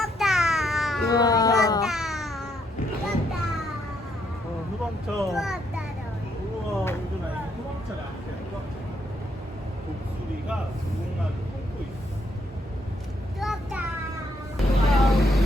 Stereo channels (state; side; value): normal; both; correlation 0.74